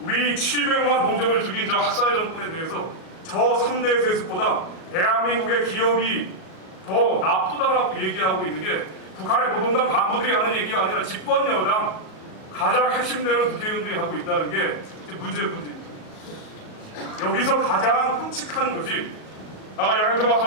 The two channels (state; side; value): late; right; 37 ms